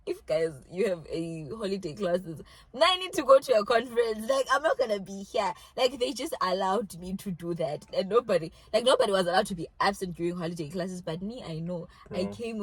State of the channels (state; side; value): identical; both; correlation 1.00